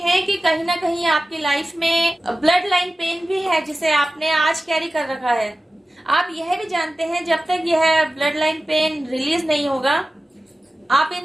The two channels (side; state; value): both; normal; correlation 0.95